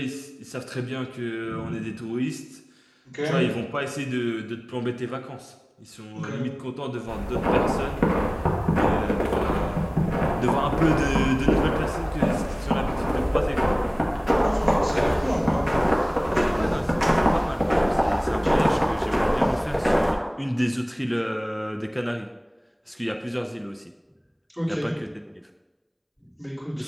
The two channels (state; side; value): identical; both; correlation 1.00